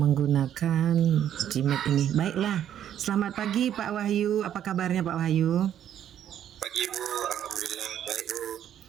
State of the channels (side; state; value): left; quieter; 10.3 dB